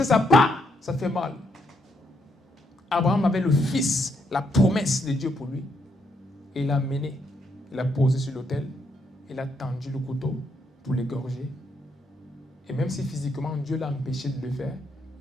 ça part, ça fait mal. Abraham avait le fils, la promesse de Dieu pour lui. Et il l'a mené, il l'a posé sur l'autel, il a tendu le couteau pour l'égorger. Et même si physiquement Dieu l'a empêché de le faire,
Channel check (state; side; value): normal; both; correlation 0.76